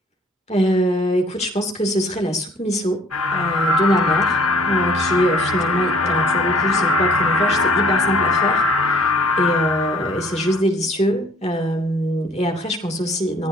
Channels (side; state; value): both; normal; correlation 0.57